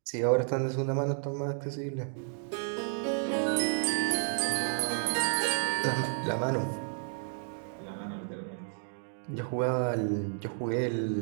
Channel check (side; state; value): left; silent; digital silence